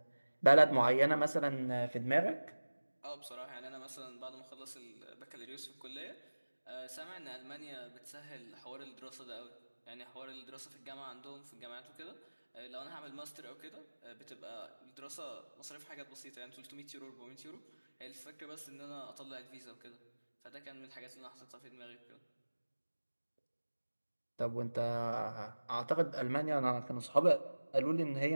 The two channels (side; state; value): both; inverted; correlation -1.00